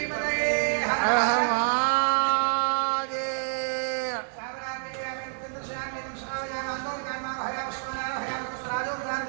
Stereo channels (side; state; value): left; silent; 60 dB below the other